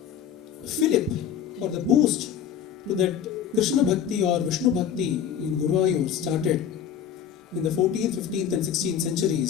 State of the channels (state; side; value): quieter; right; 8.8 dB